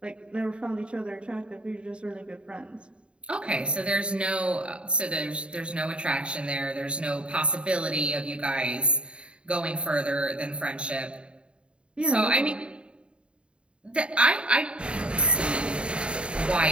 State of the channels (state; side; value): late; left; 0.055 ms